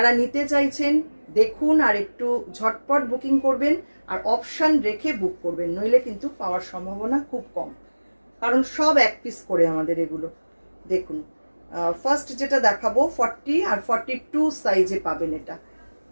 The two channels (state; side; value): inverted; both; correlation -1.00